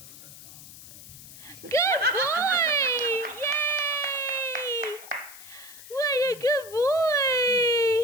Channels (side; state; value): left; noise; hiss, 17 dB below the sound